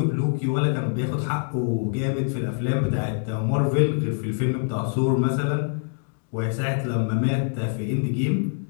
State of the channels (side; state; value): right; silent; 60 dB below the other